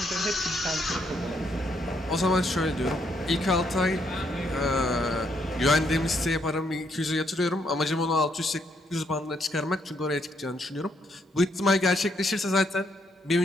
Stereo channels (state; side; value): normal; both; correlation 0.74